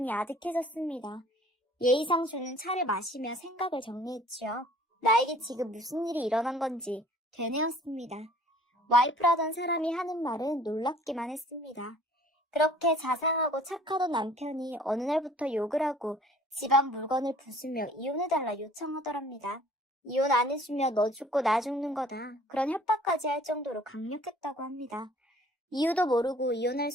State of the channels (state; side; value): normal; both; correlation 0.53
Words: 아득해졌습니다. 예의상 주는 차를 마시며 생각을 정리했지요. 나에게 지금 무슨 일이 일어난 건지 되뇌었습니다. 와이프라던 사람이 하는 말은 놀랍기만 했습니다. 그렇게 자상하고 착하던 남편이 어느 날부터 욕을 하고 집안 물건을 부수며 이혼해달라 요청하더랍니다. 이혼 안 해주면 너 죽고 나 죽는 거다. 그런 협박까지 할 정도로 강력했다고 합니다. 이유도 모르고 이혼할